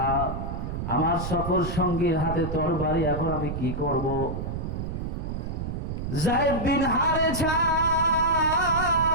আমার সফর সঙ্গীর হাতে তরবারি, এখন আমি কি করব? যায়েদ বিন হারেসা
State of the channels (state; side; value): noise; right; rumble, 5 dB below the sound